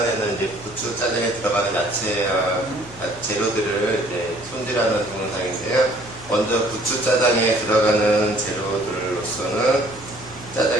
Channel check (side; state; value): right; noise; hum, 21 dB below the sound